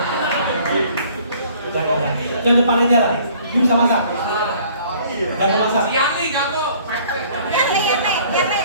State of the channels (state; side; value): inverted; both; correlation -0.55